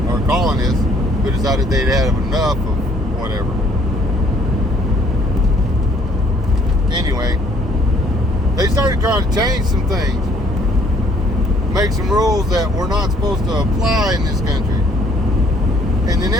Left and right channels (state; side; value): normal; both; correlation 0.62